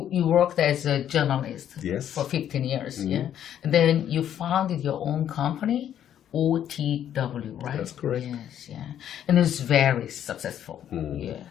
worked as a journalist Yes. for 15 years. Yeah, and then you founded your own company, OTW, right? That's correct. Yes, yeah, and it's very successful.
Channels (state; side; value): quieter; right; 10.3 dB